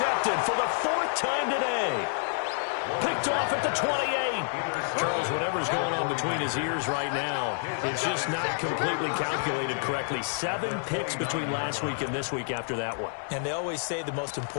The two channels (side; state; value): right; silent; digital silence